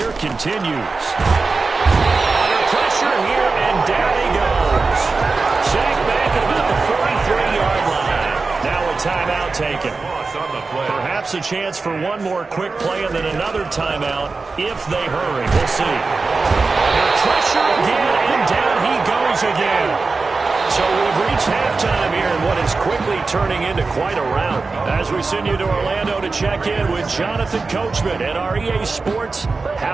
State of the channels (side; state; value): left; quieter; 4.0 dB